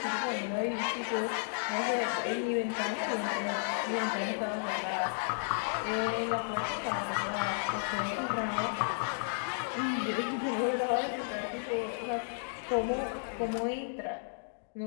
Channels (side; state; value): right; silent; digital silence